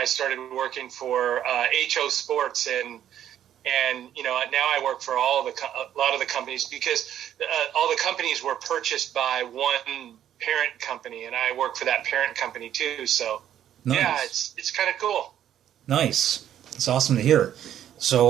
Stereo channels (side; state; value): left; quieter; 10.8 dB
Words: started working for HO Sports and now I work for a lot of the companies because all the companies were purchased by one parent company, and I work for that parent company too. So yeah, Nice. it's kind of cool. Nice. It's awesome to hear.